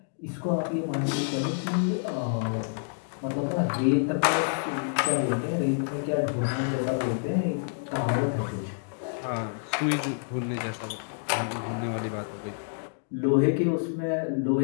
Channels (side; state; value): right; silent; digital silence